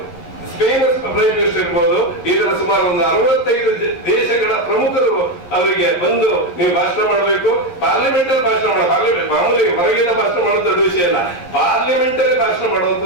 ಸ್ಪೇನ್ ಪ್ರೈಮ್ ಮಿನಿಸ್ಟರ್ ಇರ್ಬೋದು, ಇದರ ಸುಮಾರು ಒಂದು 65 ದೇಶಗಳ ಪ್ರಮುಖರು ಅವರಿಗೆ ಬಂದು ನೀವು ಭಾಷಣ ಮಾಡಬೇಕು, ಪಾರ್ಲಿಮೆಂಟ್ ಅಲ್ಲಿ ಭಾಷಣ ಮಾಡೋ, ಪಾರ್ಲಿಮೆಂಟ್ ಮಾಮೂಲಿ ಹೊರಗಿನ ಭಾಷಣ ಮಾಡೋದು ದೊಡ್ಡ ವಿಷಯ ಅಲ್ಲ, ಪಾರ್ಲಿಮೆಂಟ್ ಅಲ್ಲಿ ಭಾಷಣ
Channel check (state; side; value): late; right; 11 ms